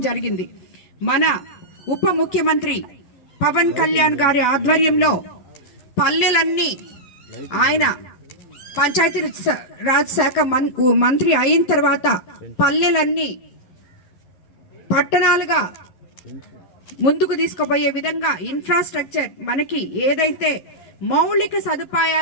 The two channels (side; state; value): right; late; 11 ms